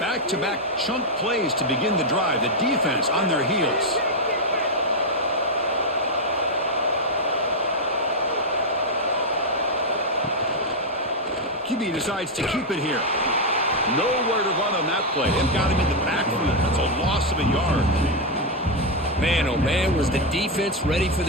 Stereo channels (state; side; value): normal; both; correlation 0.01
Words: Back-to-back chunk plays to begin the drive. The defense on their heels. QB decides to keep it here. Nowhere to run on that play. They've got him in the backfield. That's a loss of a yard. Man, oh man, was the defense ready for